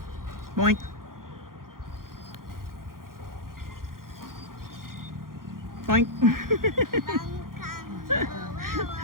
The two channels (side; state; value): left; late; 0.91 ms